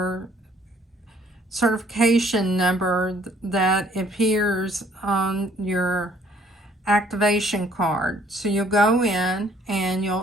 certification number that appears on your activation card. So you'll go in and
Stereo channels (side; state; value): both; normal; correlation 0.61